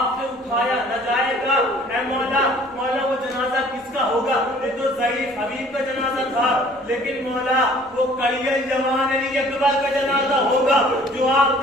سے اٹھایا نہ جائے گا. اے مولا وہ جنازہ کس کا ہوگا؟ یہ تو ضعیف حبیب کا جنازہ تھا, لیکن مولا وہ کڑیل جوان علی اکبر کا جنازہ ہوگا جو آپ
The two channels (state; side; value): normal; both; correlation 0.53